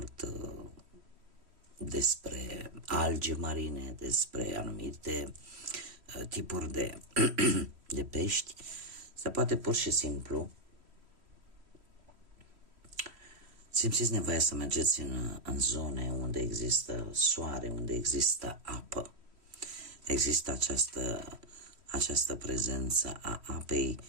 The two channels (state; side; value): late; left; 3.1 ms